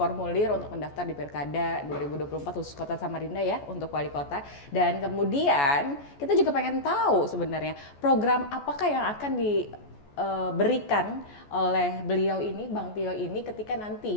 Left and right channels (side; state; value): right; late; 14 ms